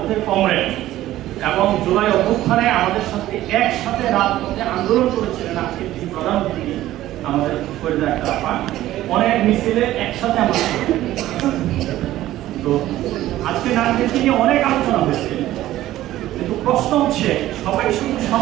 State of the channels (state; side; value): quieter; left; 14.5 dB